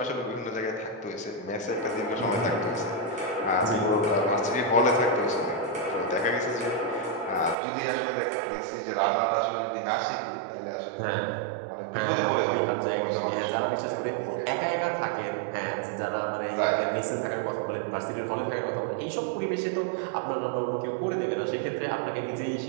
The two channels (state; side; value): drops out; left; at 7.6 s